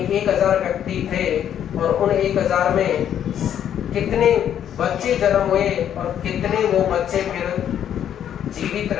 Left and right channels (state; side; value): quieter; right; 9.8 dB